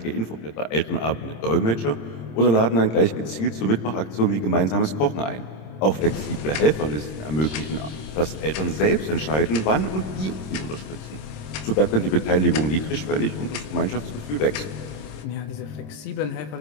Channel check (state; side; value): late; right; 26 ms